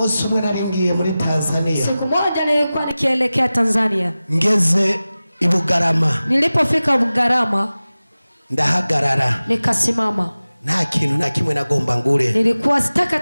umwe naringiye muri Tanzania. Siku moja nilikuwa nikielekea Tanzania. Ngeze i Bugarama. Nilipofika Bugarama ndahagarara. Nikasimama. Nta kintu na kimwe nagomba ngure. Nilikuwa sitaka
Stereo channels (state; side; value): inverted; both; correlation -0.96